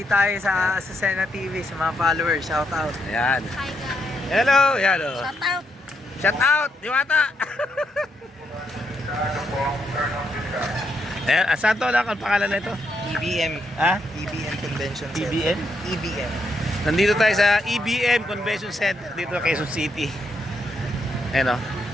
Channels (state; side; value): normal; both; correlation 0.79